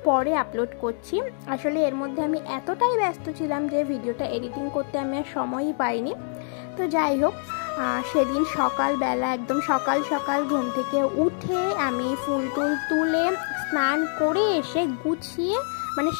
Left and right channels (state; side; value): silent; right; 61 dB below the other